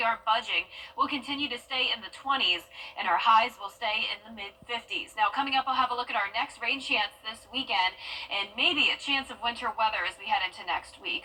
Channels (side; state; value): both; identical; correlation 1.00